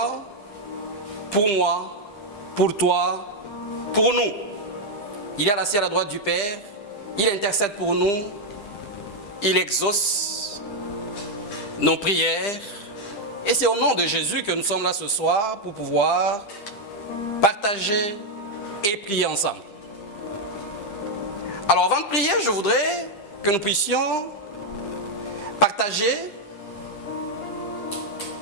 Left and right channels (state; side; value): late; right; 10 ms